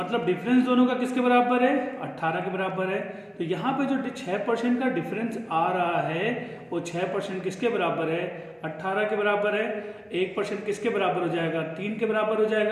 डिफरेंस दोनों का किसके बराबर है, 18 के बराबर है। तो यहाँ पे जो 6% का डिफरेंस आ रहा है वो 6% किसके बराबर है, 18 के बराबर है। 1% किसके बराबर हो जाएगा, 3 के बराबर हो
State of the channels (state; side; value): identical; both; correlation 1.00